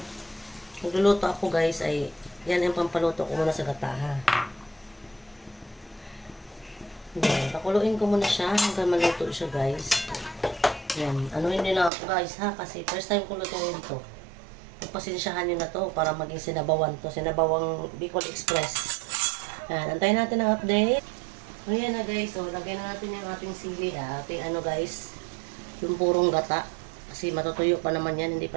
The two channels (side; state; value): left; drops out; at 11.9 s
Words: nagluluto ako guys, ay yan ang pampaluto ko muna sa gata ha. Ayan, pakuluin ko muna siya hanggang maluto siya guys. Ayan, anuhin nyo lang ako guys ha, kasi first time ko lutuin ito. Pagpasensyahan nyo na to para maging sinabawan to. Sinabawang Bicol Express. Ayan, antayin natin ang update. Ayan na guys, so lagyan na natin yung ating sili ha. Ating guys, yung purong gata. Kasi matutuyo pa naman yan, hindi pa